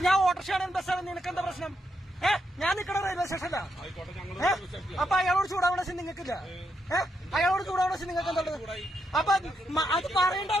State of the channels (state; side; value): normal; both; correlation 0.81